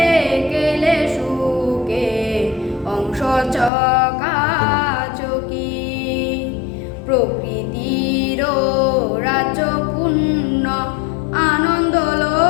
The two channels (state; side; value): drops out; right; at 3.7 s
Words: গেলে সুখে অংশ চকাচকি প্রকৃতির রাজপূর্ণ আনন্দ